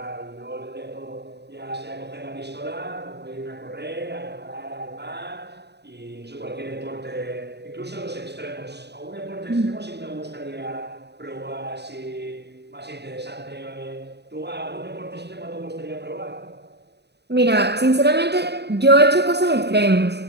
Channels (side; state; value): left; late; 0.49 ms